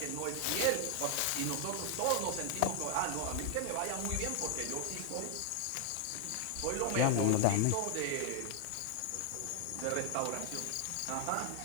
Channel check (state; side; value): different; both; correlation 0.00